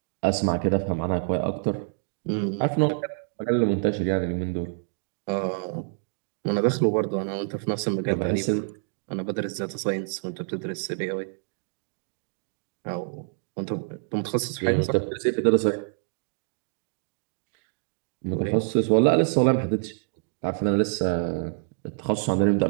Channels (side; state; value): left; silent; digital silence